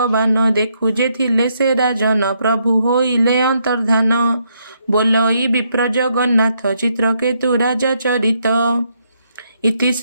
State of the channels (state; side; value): inverted; both; correlation -0.76